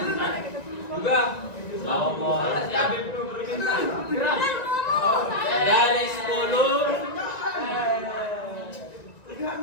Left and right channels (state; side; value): late; right; 1.9 ms